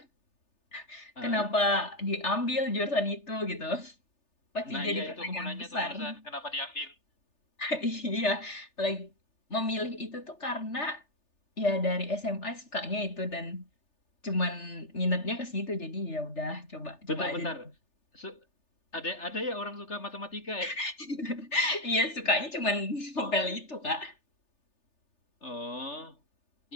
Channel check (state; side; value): late; right; 3.4 ms